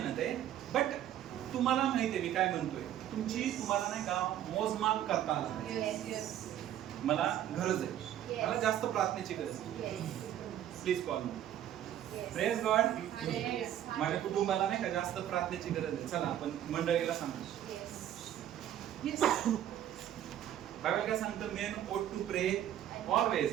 आहे. बट तुम्हाला माहिती आहे मी काय म्हणतोय, तुमची तुम्हाला नाही का मोजमाप करता आला पाहिजे. मला गरज आहे, मला जास्त प्रार्थनेची गरज आहे, please call me. Praise God. माझ्या कुटुंबाला नाही का जास्त प्रार्थनेची गरज आहे, चला आपण मंडळीला सांगू. बायबल काय सांगतं, main ought to pray always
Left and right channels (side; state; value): left; quieter; 11.3 dB